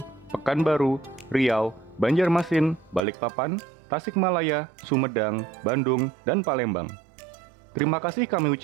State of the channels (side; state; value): left; drops out; at 3.0 s